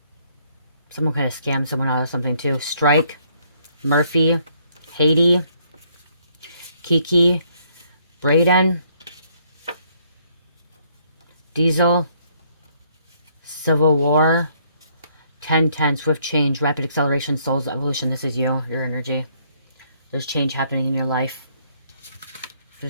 Someone could have scammed someone out of something too. Strike, Murphy, Haiti, Kiki, Braden, Diesel, Civil War, 1010, Swift Change, Rapid Acceleration, Soul's Evolution. This is you, your energy. There's change happening in your life.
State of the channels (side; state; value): both; inverted; correlation -0.68